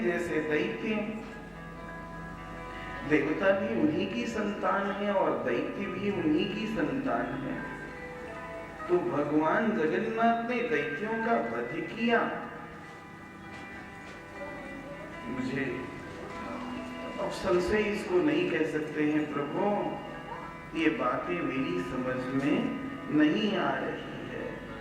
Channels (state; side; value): identical; both; correlation 1.00